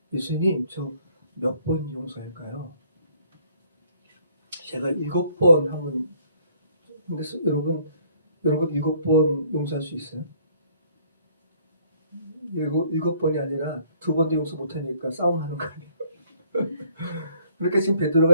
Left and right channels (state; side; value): inverted; both; correlation -0.63